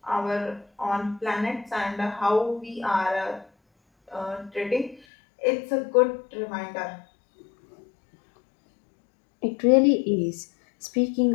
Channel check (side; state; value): right; drops out; at 5.0 s